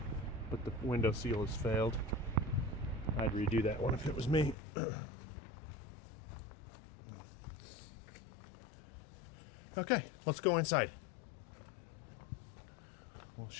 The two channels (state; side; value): drops out; right; at 4.5 s